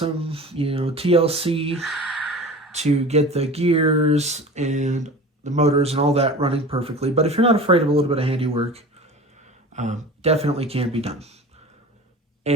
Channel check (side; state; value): both; normal; correlation 0.37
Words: TLC to get the gears and the motors and all that running perfectly. But if you're not afraid of a little bit of handiwork, definitely can be done.